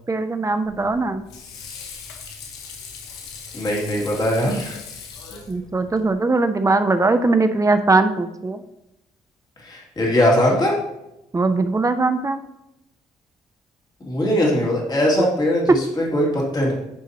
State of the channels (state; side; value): normal; both; correlation 0.72